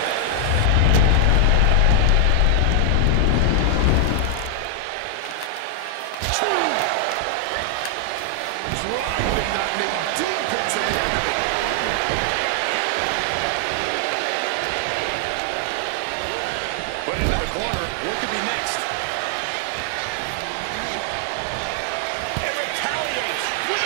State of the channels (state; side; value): different; both; correlation 0.00